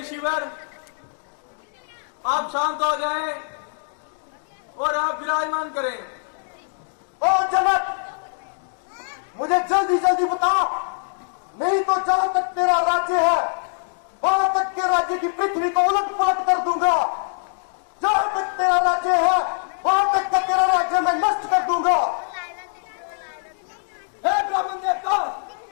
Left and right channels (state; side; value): silent; right; 63 dB below the other